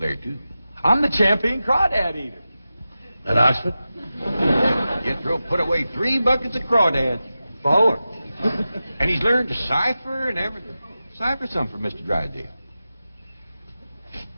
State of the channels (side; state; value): both; inverted; correlation -0.93